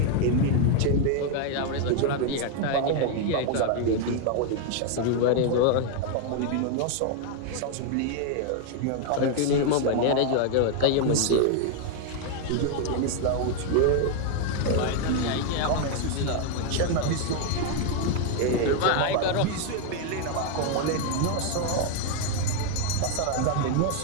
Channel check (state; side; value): different; both; correlation 0.00